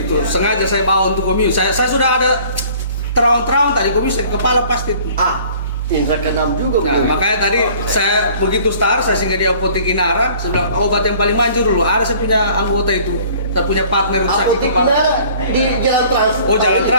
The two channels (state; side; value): inverted; both; correlation -0.52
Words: itu sengaja saya bawa untuk komio. Saya sudah ada terang tadi komio kepala pasti. Indra keenam juga. Nah, makanya tadi saya begitu start saya singgah di Apotek Inara, saya bilang obat yang paling manjur dulu. Ada saya punya anggota itu, saya punya partner sakit Apotek kepala. Inara di Jalan Trans. Oh, Jalan